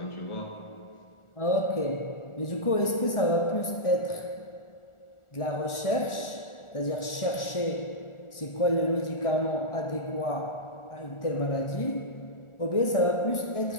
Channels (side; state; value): right; late; 1.4 ms